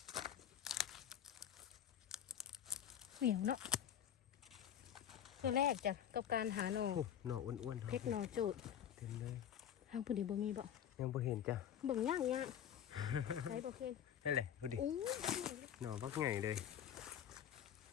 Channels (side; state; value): right; quieter; 9.7 dB